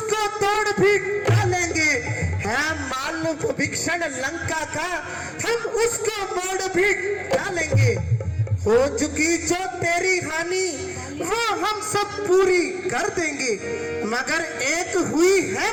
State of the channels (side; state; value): both; identical; correlation 1.00